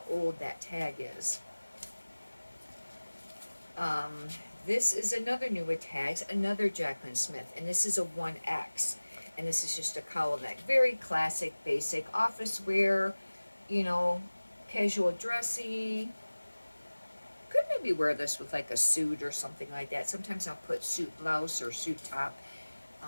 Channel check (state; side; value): inverted; both; correlation -1.00